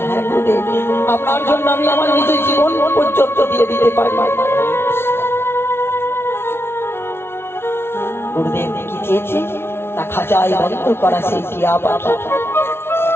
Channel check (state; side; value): late; right; 0.12 ms